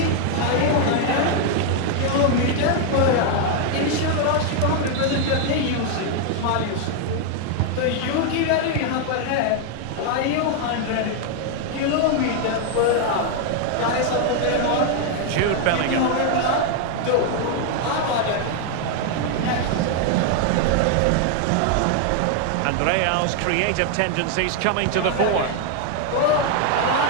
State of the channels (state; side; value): different; both; correlation 0.00